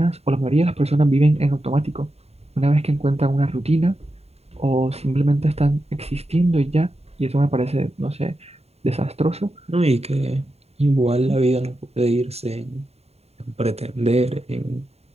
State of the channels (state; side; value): late; left; 0.30 ms